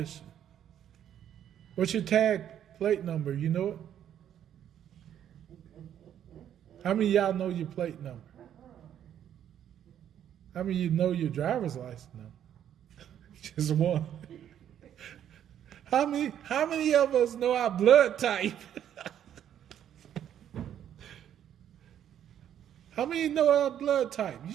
What's your tag plate number? You know it? How many of y'all know your plate number? How many of you know your driver's license number? Just one. How many of us know our blood type? How many know our blood type? You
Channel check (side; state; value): left; quieter; 10.1 dB